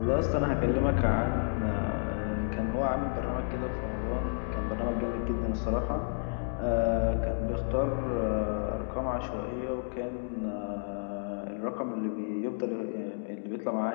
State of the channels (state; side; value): silent; right; digital silence